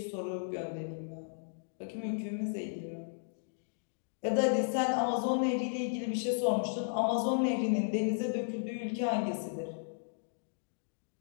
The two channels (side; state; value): right; silent; digital silence